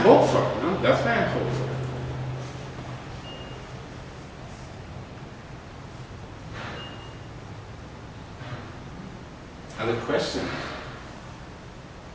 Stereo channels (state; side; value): identical; both; correlation 1.00